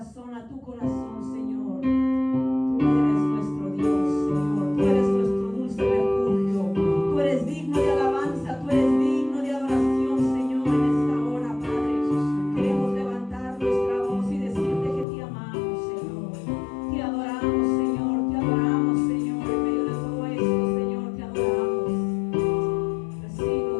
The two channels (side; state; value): right; drops out; at 15.1 s